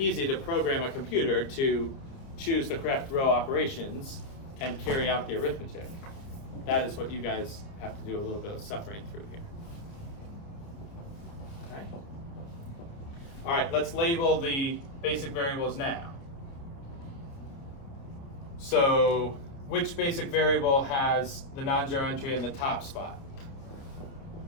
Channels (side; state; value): right; late; 29 ms